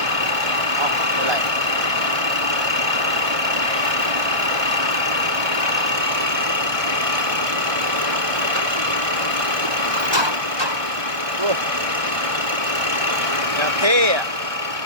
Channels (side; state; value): left; late; 1.2 ms